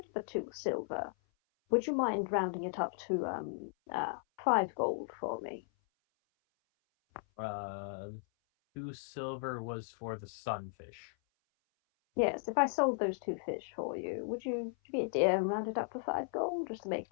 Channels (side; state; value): right; silent; 54 dB below the other